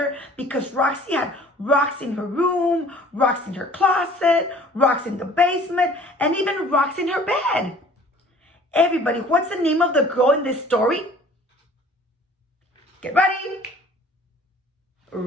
because Roxy had rocks in her room, rocks in her closet, rocks in the basement, and even rocks in her bed. Everybody, what's the name of the girl in this story? Get ready.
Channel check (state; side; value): normal; both; correlation 0.50